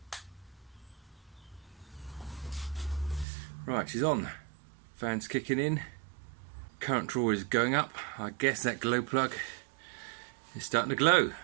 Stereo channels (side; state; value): left; drops out; at 3.2 s